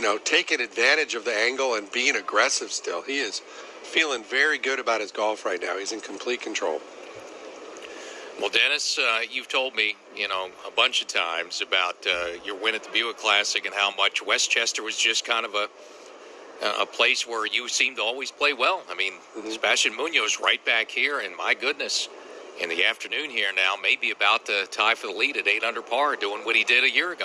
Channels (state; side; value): identical; both; correlation 1.00